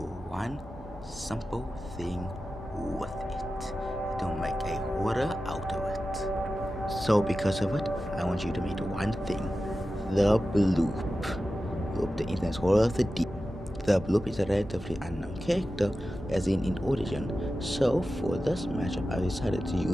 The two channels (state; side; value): normal; both; correlation 0.93